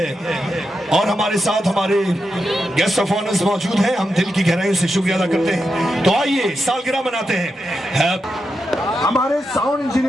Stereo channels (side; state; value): both; normal; correlation 0.86